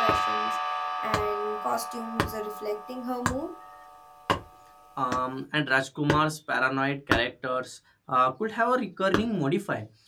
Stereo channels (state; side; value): identical; both; correlation 1.00